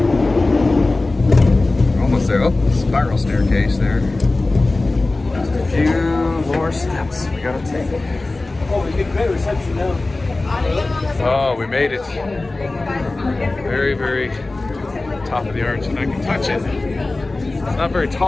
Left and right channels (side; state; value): right; quieter; 3.1 dB